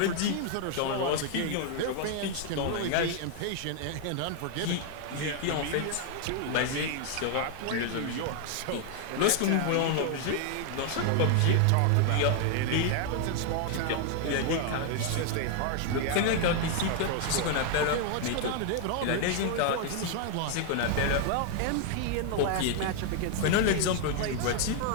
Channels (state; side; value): different; both; correlation 0.00